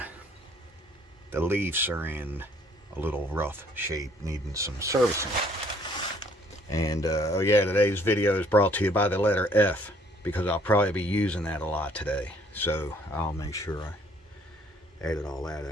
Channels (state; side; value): normal; both; correlation 0.61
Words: leaves are in a little rough shape, needing some servicing. And oh yeah, today's video is brought to you by the letter F, because I'll probably be using that a lot today. So I'll make sure I edit all that